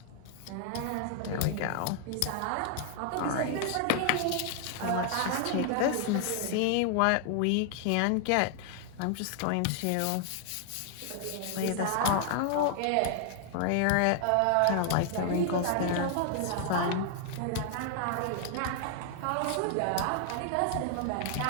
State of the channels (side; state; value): both; different; correlation 0.00